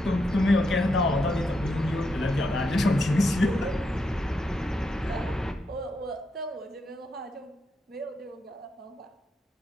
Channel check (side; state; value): both; normal; correlation 0.82